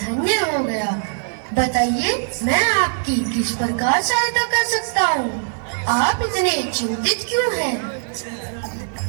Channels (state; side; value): silent; left; digital silence